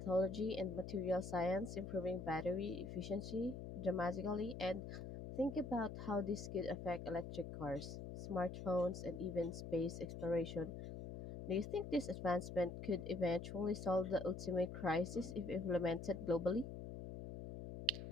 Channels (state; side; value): noise; left; hum, 8 dB below the sound